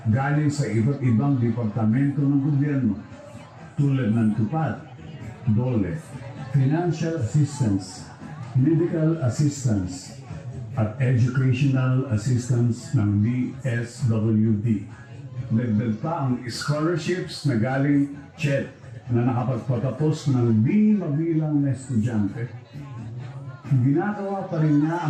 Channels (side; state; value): both; identical; correlation 1.00